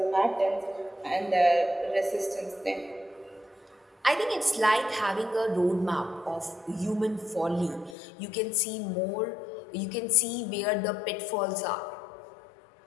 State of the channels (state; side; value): drops out; right; at 8.0 s